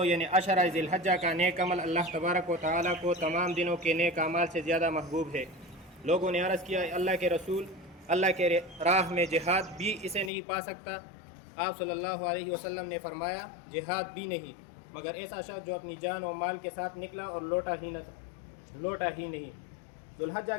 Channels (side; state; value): right; drops out; at 10.3 s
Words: یعنی عشرہ ذی الحجہ کا نیک عمل اللہ تبارک و تعالیٰ کو تمام دنوں کے نیک اعمال سے زیادہ محبوب ہے۔ لوگوں نے عرض کیا، اللہ کے رسول، اللہ کے راہ میں جہاد بھی اسے نہیں پا سکتا؟ آپ صلی اللہ علیہ وسلم نے فرمایا، جہاد بھی نہیں، مگر ایسا شخص جو اپنی جان و مال کے ساتھ نکلا اور لوٹا ہی نہیں۔ ذو الحجہ